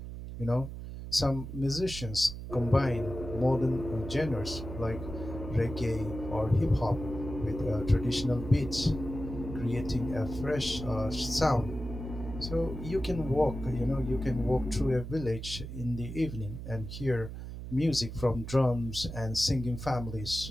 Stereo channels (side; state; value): right; noise; hum, 9 dB below the sound